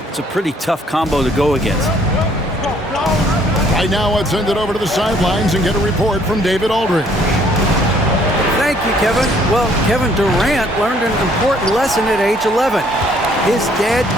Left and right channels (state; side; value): normal; both; correlation 0.63